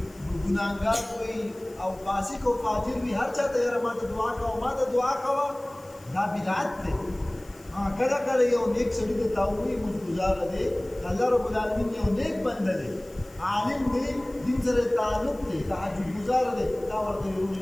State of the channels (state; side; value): noise; left; hiss, 25 dB below the sound